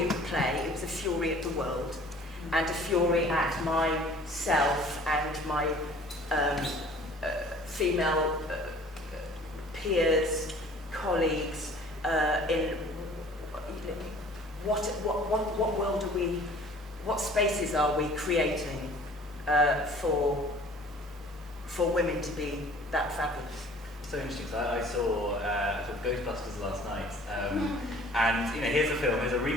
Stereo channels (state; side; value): normal; both; correlation 0.50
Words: at the play, it was a fury at the world, and a fury at myself and my female peers, colleagues, in what world are we, what spaces are we creating for women to be that fabulous? So interesting. So I saw Ghostbusters last night, and you know, here's a